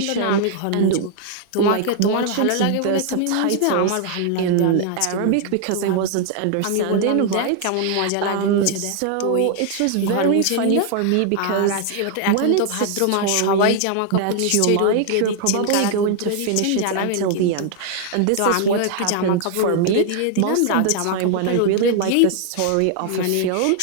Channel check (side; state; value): both; different; correlation 0.00